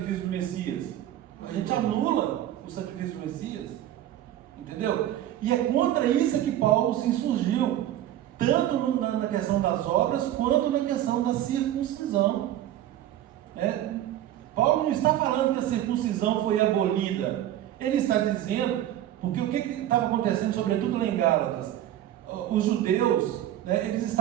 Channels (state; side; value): quieter; left; 12.5 dB